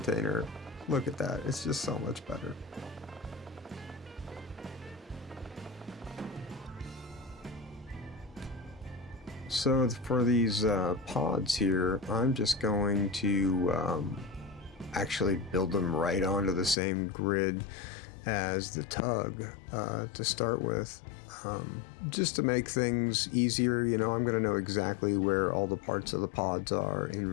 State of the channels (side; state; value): right; drops out; at 16.8 s